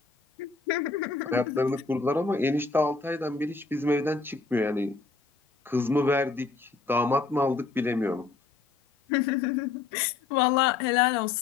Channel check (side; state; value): right; quieter; 4.3 dB